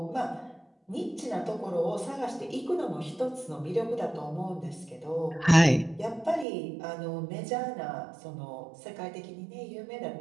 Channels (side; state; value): left; drops out; at 6.5 s